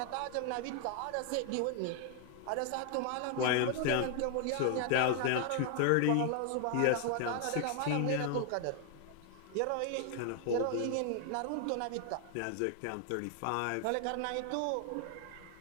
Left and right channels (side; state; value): both; different; correlation 0.00